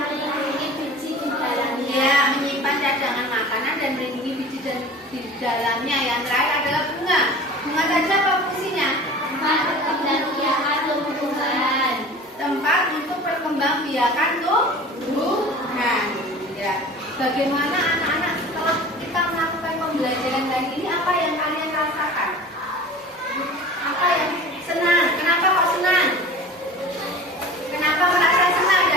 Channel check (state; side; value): normal; both; correlation 0.40